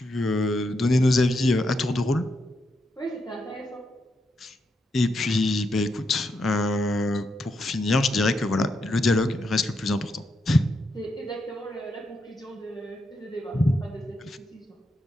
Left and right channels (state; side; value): normal; both; correlation 0.82